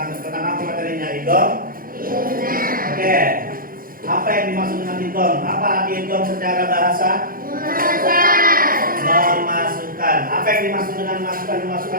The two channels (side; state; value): left; late; 0.41 ms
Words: apa materinya idgham. Oke. Apa yang dimaksud dengan idgham? Apa arti idgham secara bahasa? Memasukkan. Apa yang dimaksud dengan memasukkan?